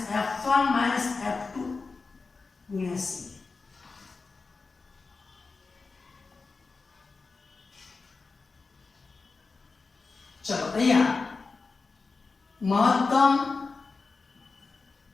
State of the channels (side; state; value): right; quieter; 4.2 dB